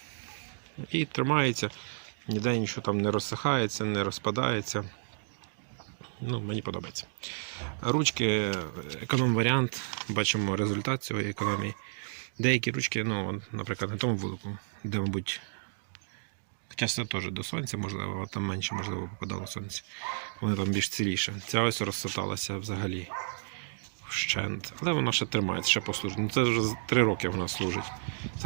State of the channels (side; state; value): left; silent; digital silence